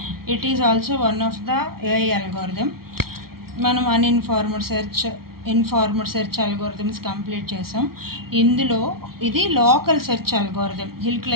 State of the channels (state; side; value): late; left; 0.94 ms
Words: It is also one of the AI algorithm. మనం ఇన్ఫార్మడ్ search algorithms complete చేసాం. ఇందులో ఇది local search algorithm. Hill